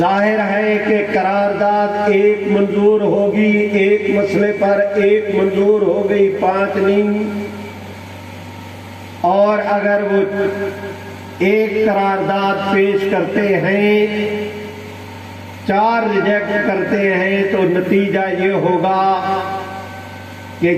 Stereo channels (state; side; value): identical; both; correlation 1.00